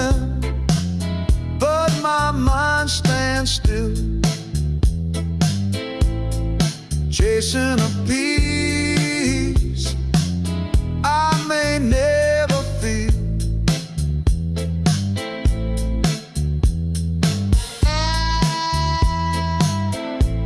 but my mind stands still, chasing a peace I may never feel.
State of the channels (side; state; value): both; identical; correlation 1.00